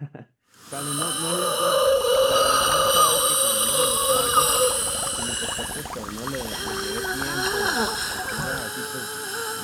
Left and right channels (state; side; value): identical; both; correlation 1.00